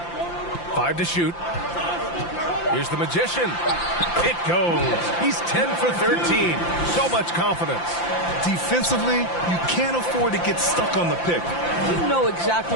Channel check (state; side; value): late; right; 5.8 ms